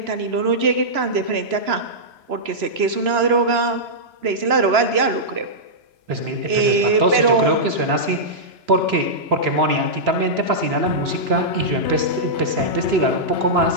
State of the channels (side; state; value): left; late; 3.0 ms